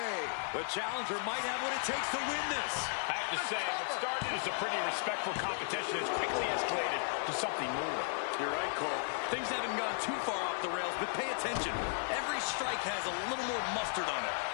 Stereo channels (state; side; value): silent; right; digital silence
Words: The challenger might have what it takes to win this. I have to say, what started as a pretty respectful competition has quickly escalated to something more. You're right, Cole. Things haven't gone too far off the rails, but pay attention. Every strike has a little more mustard on it.